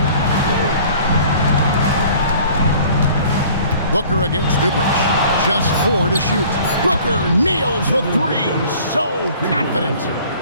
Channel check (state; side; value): inverted; both; correlation -0.50